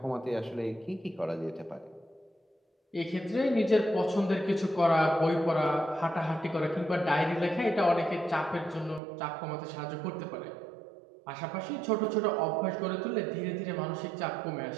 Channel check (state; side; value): drops out; left; at 9.0 s